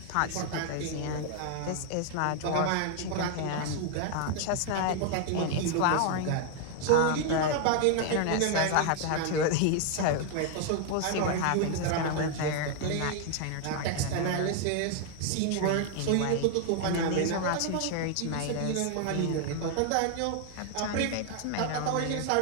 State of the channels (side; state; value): both; different; correlation 0.00